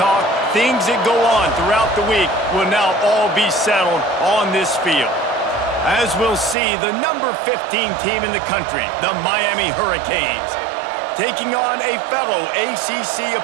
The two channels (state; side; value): drops out; left; at 6.6 s